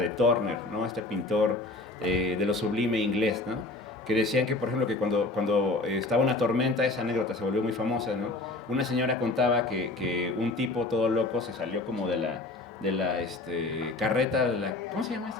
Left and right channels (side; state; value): right; quieter; 3.1 dB